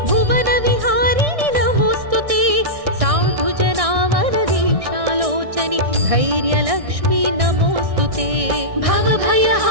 भुवनविहारिणि नमोऽस्तु ते साधुजनावनदीक्षालोचनि धैर्यलक्ष्मी नमोऽस्तु ते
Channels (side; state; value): left; late; 1.6 ms